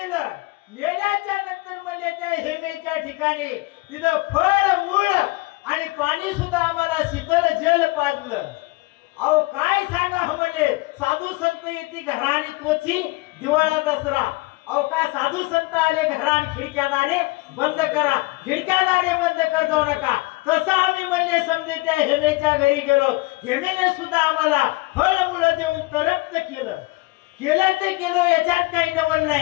नेल्याच्या नंतर म्हणजे त्या हेमेच्या ठिकाणी तिथं फळ मूळ आणि पाणी सुद्धा आम्हाला शीतल जल पाजलं. अहो काय सांगा म्हणले, साधू संत येते घरा आणि तोची दिवाळा दसरा. अहो का साधू संत आले घरा आणि खिडक्या दारे बंद करा, खिडक्या दारे बंद कर जाऊ नका. तसं आम्ही म्हणले समजे त्या हेमेच्या घरी गेलो. हेमेने सुद्धा आम्हाला फळ मुलं देऊन तरक्त केलं. केलं ते केलं, याच्यात काही नवल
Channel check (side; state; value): right; quieter; 22.9 dB